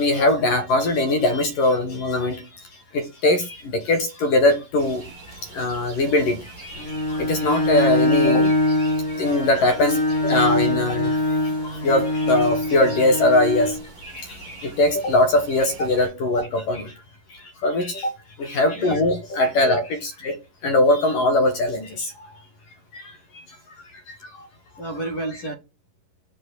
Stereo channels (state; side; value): late; right; 11 ms